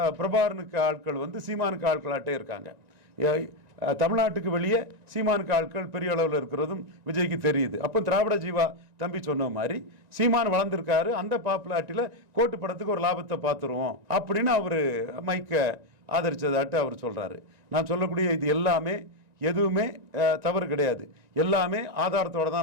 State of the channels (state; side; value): late; left; 1.9 ms